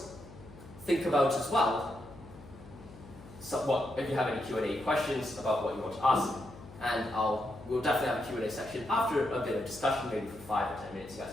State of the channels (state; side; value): noise; left; hum, 18 dB below the sound